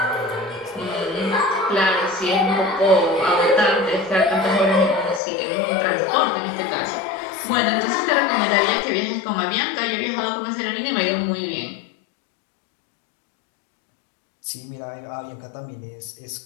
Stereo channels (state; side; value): drops out; right; at 5.2 s